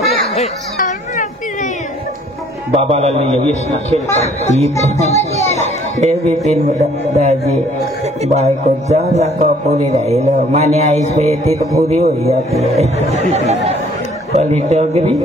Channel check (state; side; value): normal; both; correlation 0.58